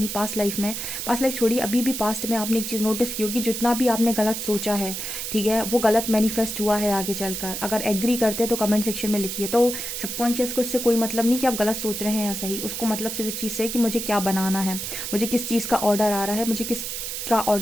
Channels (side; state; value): right; noise; hiss, 5 dB below the sound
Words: पास्ट लाइफ छोड़िए, अभी भी पास्ट में आपने एक चीज़ नोटिस की होगी, जितना भी आपने गलत सोचा है, ठीक है, वो गलत मैनिफेस्ट हुआ है आगे चलकर। अगर एग्री करते हैं तो कमेंट सेक्शन में लिखिए। तो सबकॉन्शियस को इससे कोई मतलब नहीं कि आप गलत सोच रहे हैं या सही, उसको मतलब सिर्फ इस चीज़ से कि मुझे क्या बनाना है, मुझे किस चीज़ का ऑर्डर आ रहा है, मुझे किस का